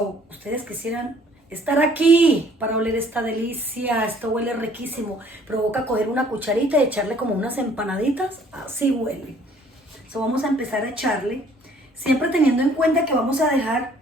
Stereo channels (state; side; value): normal; both; correlation 0.58